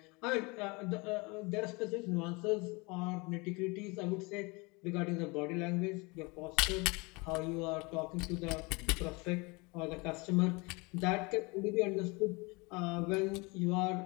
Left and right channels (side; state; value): right; quieter; 27.2 dB